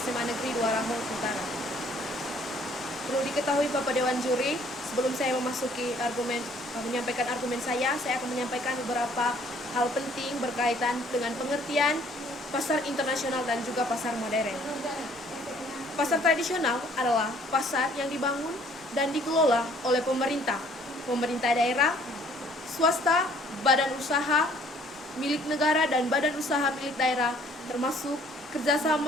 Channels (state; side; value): normal; both; correlation 0.60